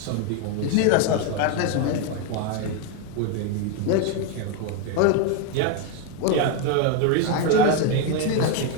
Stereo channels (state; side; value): different; both; correlation 0.02